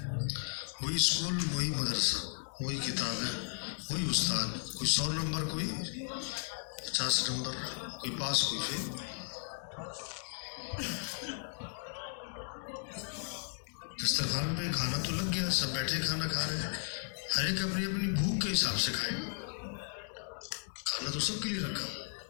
وہی اسکول، وہی مدرسہ، وہی کتابیں، وہی استاد، کوئی 100 نمبر، کوئی 50 نمبر، کوئی پاس کوئی فیل. دسترخوان پہ کھانا تو لگ گیا، سب بیٹھے کھانا کھا رہے ہیں، ہر ایک اپنی اپنی بھوک کے حساب سے کھائے گا. کھانا تو سب کے لیے رکھا.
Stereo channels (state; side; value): silent; right; 54 dB below the other